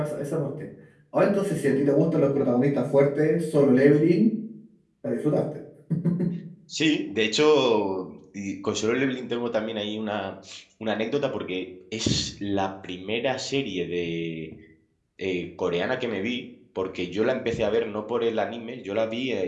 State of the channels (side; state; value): both; identical; correlation 1.00